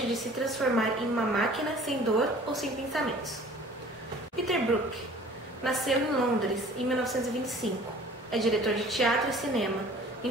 de se transformar em uma máquina sem dor ou sem pensamentos. Peter Brook. Nasceu em Londres em 1925. É diretor de teatro e cinema.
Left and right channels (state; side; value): normal; both; correlation 0.48